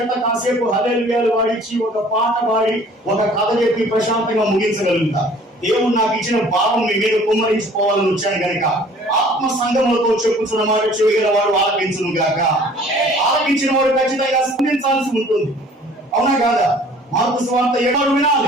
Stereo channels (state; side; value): normal; both; correlation 0.52